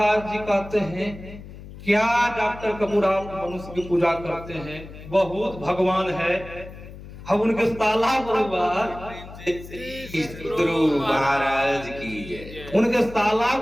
जी कहते हैं क्या डॉक्टर कपूर आप मनुष्य की पूजा करते हैं, बहुत भगवान है। हम उनके साला परिवार गुरु महाराज की जय। उनके साला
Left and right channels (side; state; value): left; noise; hum, 15 dB below the sound